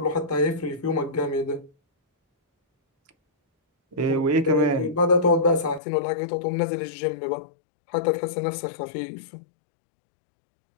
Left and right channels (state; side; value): drops out; right; at 5.8 s